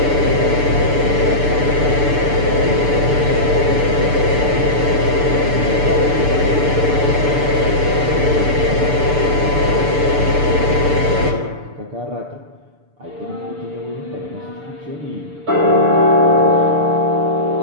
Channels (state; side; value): late; left; 6.8 ms